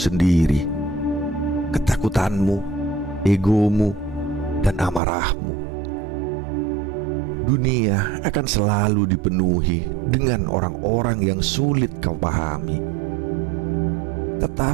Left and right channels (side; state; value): left; drops out; at 5.0 s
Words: ketakutanmu, egomu, dan amarahmu. Dunia akan selalu dipenuhi dengan orang-orang yang sulit kau pahami.